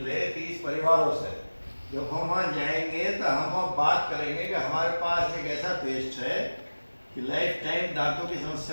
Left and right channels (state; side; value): inverted; both; correlation -1.00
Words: 30 परिवारों से, जब हम वहाँ जाएंगे तो हम वहाँ बात करेंगे कि हमारे पास एक ऐसा पेस्ट है कि लाइफ टाइम दांतों की